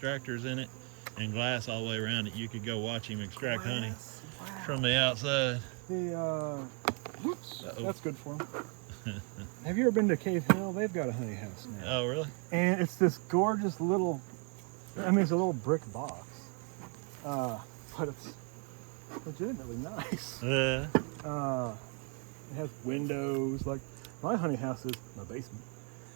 in it and glass all the way around it. You could go watch him extract honey from the outside. Whoops, that's good for him. Have you ever been to Cave Hill? They've got a honey house now. Oh, really? And it's this gorgeous little, it's a little brick box. But it's legitimately nice. Yeah. It has windows. Like my honey house is my basement.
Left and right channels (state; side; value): quieter; left; 34.9 dB